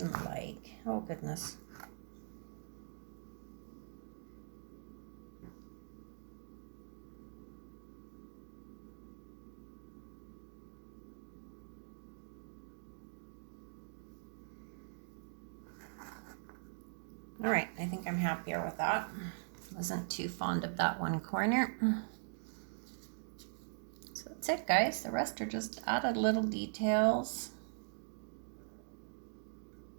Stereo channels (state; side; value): silent; left; digital silence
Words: like. Oh goodness. happier with that. Wasn't too fond of that one corner. So that's it, guys. The rest are just added little details.